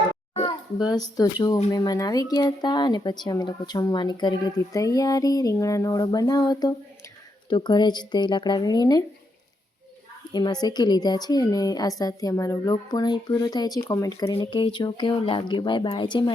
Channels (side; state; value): both; normal; correlation 0.81